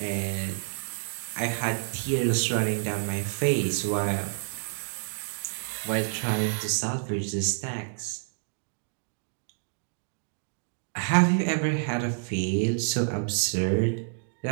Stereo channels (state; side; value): silent; left; digital silence